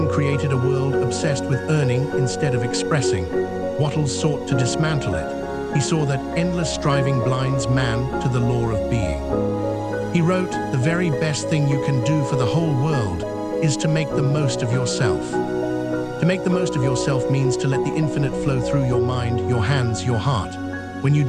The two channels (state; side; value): identical; both; correlation 1.00